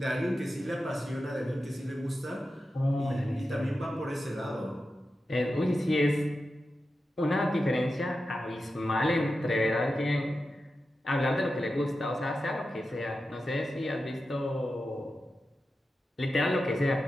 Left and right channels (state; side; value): normal; both; correlation 0.91